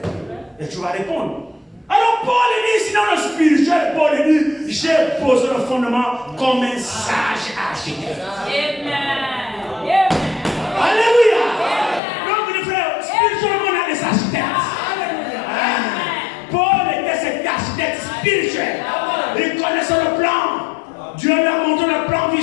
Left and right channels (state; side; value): drops out; right; at 12.0 s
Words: Et tu vas répondre. Alors Paul dit, sinon le spirituel, Paul dit, j'ai posé le fondement comme un sage architecte. Amen. Alléluia. Donc les frères, spirituellement on a des architectes. Paul était cet architecte spirituel. Il connaissait le plan. Dieu lui a montré le plan